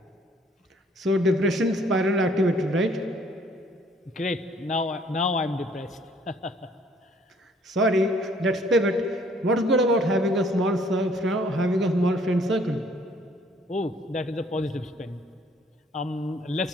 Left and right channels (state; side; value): normal; both; correlation 0.61